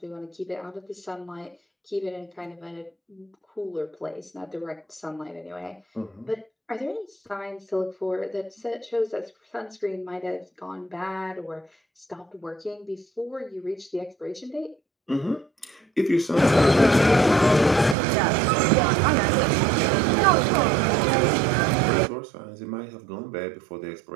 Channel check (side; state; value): left; drops out; at 17.9 s